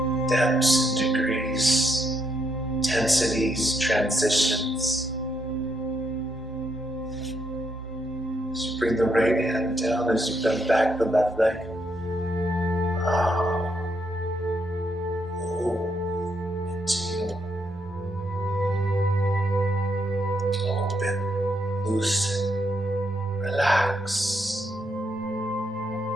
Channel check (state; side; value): normal; both; correlation 0.77